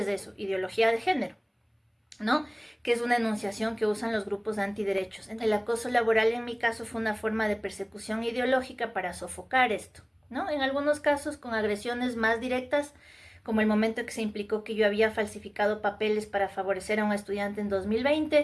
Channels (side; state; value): both; identical; correlation 1.00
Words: eso? Ideología de género, ¿no? Que es una enunciación que usan los grupos antiderechos. El acoso laboral en mi caso fue una forma de persecución ideológica para sofocar esto, ¿no? En algunos casos con agresiones más directas, como el momento en que se implicó que yo había falsificado papeles para favorecer a un estudiante en